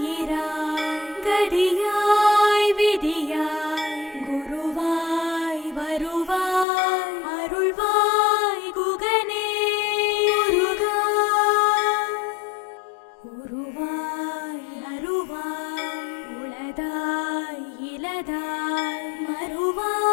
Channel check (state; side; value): drops out; right; at 6.7 s